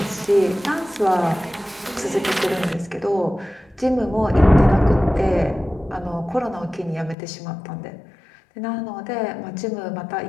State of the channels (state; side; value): drops out; right; at 7.2 s